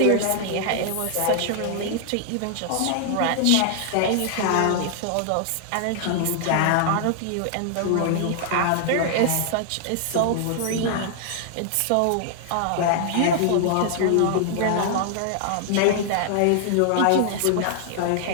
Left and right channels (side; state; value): both; different; correlation 0.00